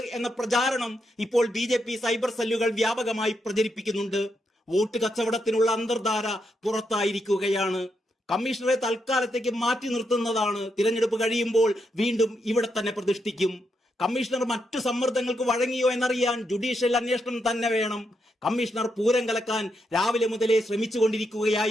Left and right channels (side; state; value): both; normal; correlation 0.82